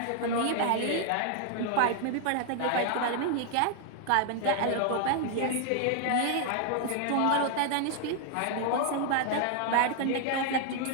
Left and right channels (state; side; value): different; both; correlation 0.00